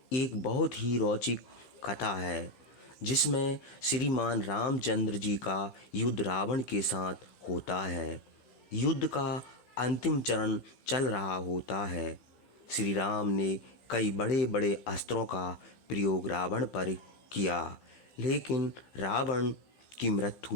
एक बहुत ही रोचक कथा है जिसमें श्रीमान रामचंद्र जी का युद्ध रावण के साथ होता है। युद्ध का अंतिम चरण चल रहा होता है। श्री राम ने कई बड़े बड़े अस्त्रों का प्रयोग रावण पर किया, लेकिन रावण की मृत्यु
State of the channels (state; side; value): late; right; 16 ms